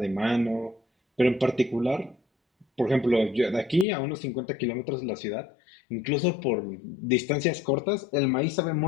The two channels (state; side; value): drops out; right; at 3.9 s